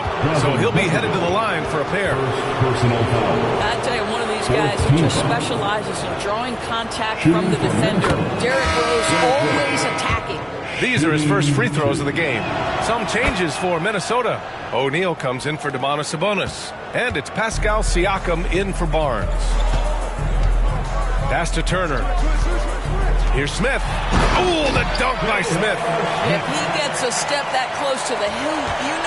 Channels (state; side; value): identical; both; correlation 1.00